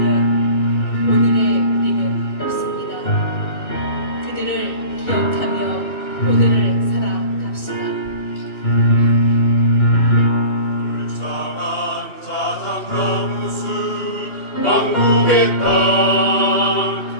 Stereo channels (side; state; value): right; late; 2.8 ms